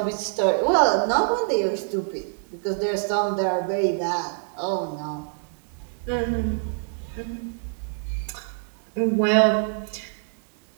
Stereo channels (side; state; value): left; silent; digital silence